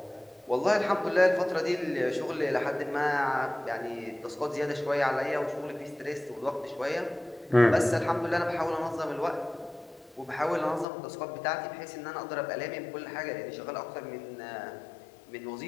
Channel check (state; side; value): drops out; right; at 10.9 s